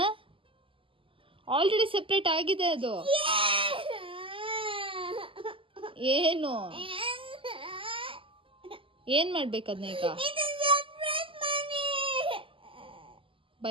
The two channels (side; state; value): left; late; 0.25 ms